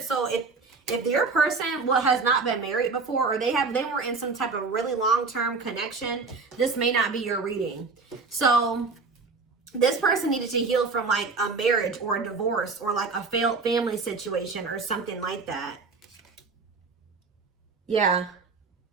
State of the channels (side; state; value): left; quieter; 4.3 dB